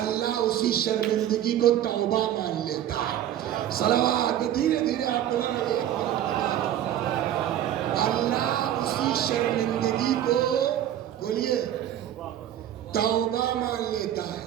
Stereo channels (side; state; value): left; quieter; 11.3 dB